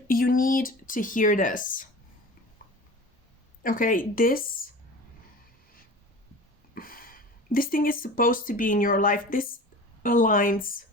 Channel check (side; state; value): both; normal; correlation 0.37